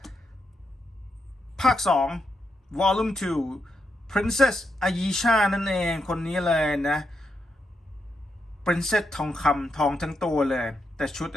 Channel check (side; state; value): both; normal; correlation 0.83